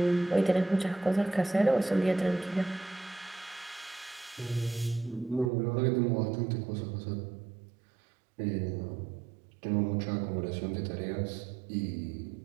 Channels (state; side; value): drops out; left; at 5.5 s